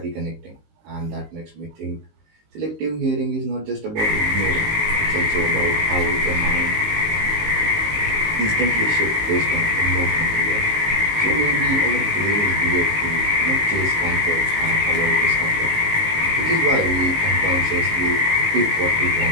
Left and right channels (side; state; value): left; late; 19 ms